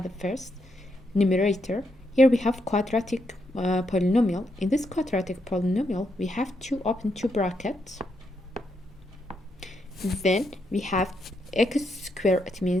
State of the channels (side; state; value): both; normal; correlation 0.80